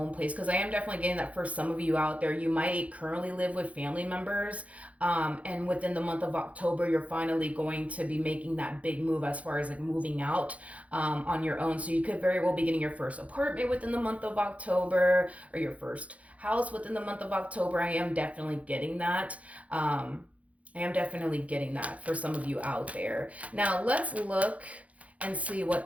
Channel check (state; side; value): late; left; 0.066 ms